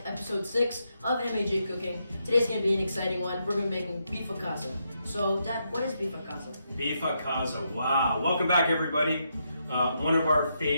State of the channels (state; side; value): inverted; both; correlation -0.81